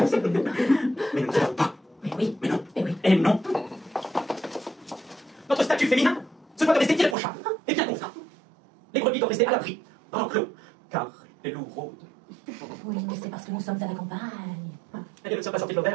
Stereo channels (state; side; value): drops out; left; at 7.2 s